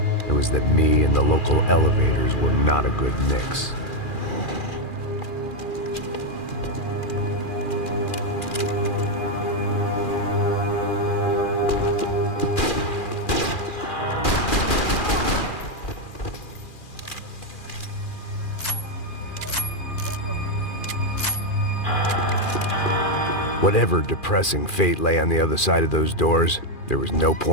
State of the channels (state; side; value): late; right; 2.4 ms